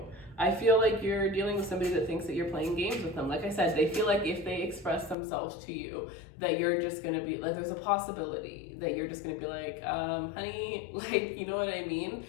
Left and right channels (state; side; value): drops out; right; at 5.2 s